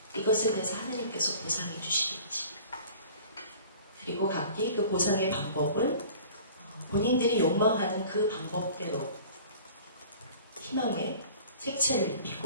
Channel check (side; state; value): both; inverted; correlation -0.45